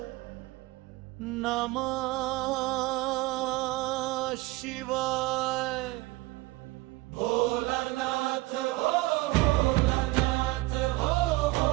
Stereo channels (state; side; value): quieter; left; 20.6 dB